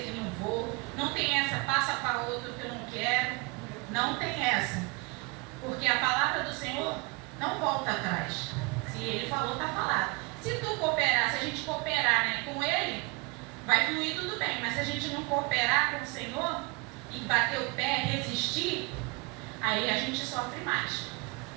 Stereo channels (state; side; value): quieter; left; 28.5 dB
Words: que não vou, não tem essa passa para outro que eu não quero. Não tem essa. Porque a palavra do Senhor não volta atrás. Se ele falou, está falado. Se tu cooperar, se a gente cooperar, né, com ele, vai fluir tudo bem. Mas se a gente não cooperar com o Senhor e bater o pé, resistir, aí a gente sofre mais.